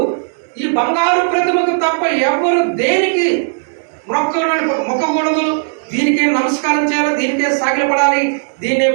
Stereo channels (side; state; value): left; silent; digital silence